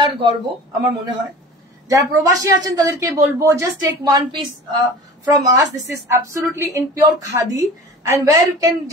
গর্ব আমার মনে হয়। যারা প্রবাসী আছেন তাদেরকে বলবো just take one piece from us. This is absolutely in pure khadi, and where you can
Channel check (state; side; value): normal; both; correlation 0.39